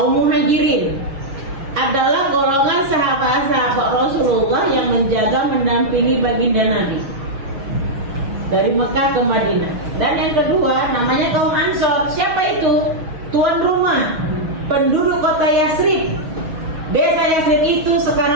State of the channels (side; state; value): left; late; 6.2 ms